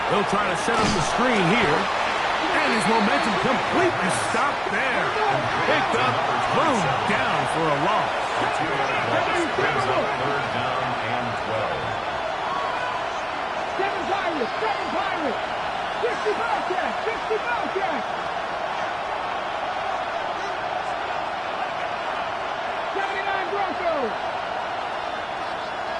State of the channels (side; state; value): both; identical; correlation 1.00